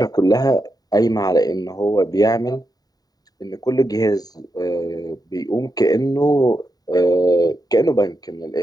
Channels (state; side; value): late; right; 0.18 ms